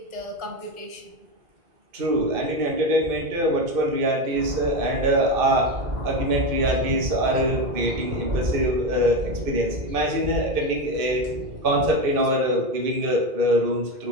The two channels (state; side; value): late; left; 2.5 ms